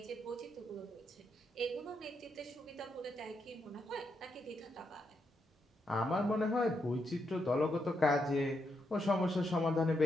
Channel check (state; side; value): normal; both; correlation 0.82